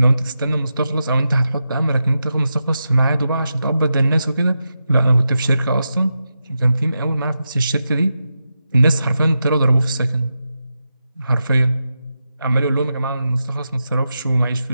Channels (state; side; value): inverted; both; correlation -0.88